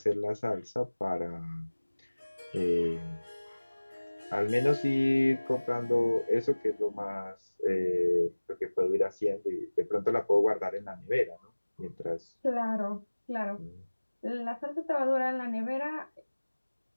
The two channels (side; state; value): both; inverted; correlation -1.00